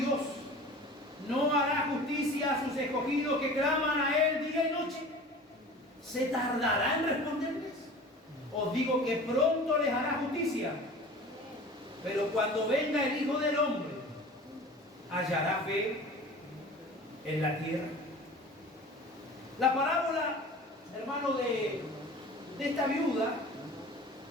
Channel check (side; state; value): both; normal; correlation 0.40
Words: no hará justicia a sus escogidos que claman a Él día y noche? ¿Se tardará en responderles? Os digo que pronto les hará justicia. Pero cuando venga el Hijo del Hombre, ¿hallará fe en la tierra? La parábola, hermano, de esta viuda